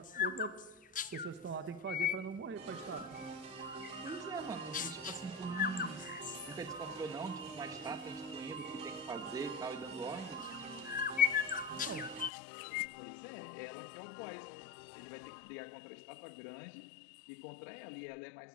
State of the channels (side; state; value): right; drops out; at 12.3 s